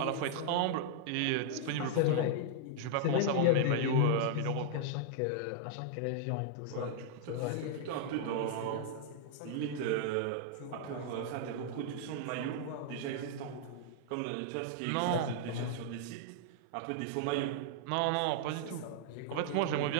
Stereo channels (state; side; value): different; both; correlation -0.01